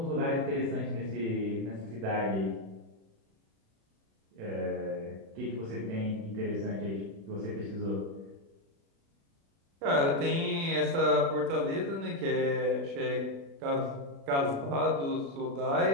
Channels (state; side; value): late; left; 36 ms